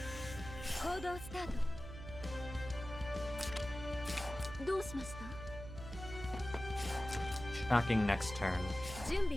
Shocking next turn.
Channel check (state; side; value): noise; right; hum, 10 dB below the sound